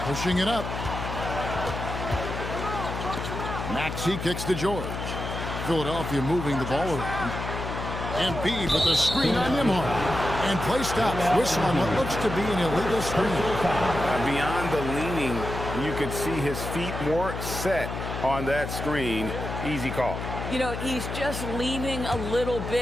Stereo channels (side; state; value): left; noise; hum, 6 dB below the sound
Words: Pushing it up. Maxey kicks to George. Philadelphia moving the ball around. Embiid with a screen on Nembhard. And play stops. Whistle on what looks to be an illegal screen. Beyond the leaning, you could see his feet more set on that screen. Easy call. You know, he's just leaning a little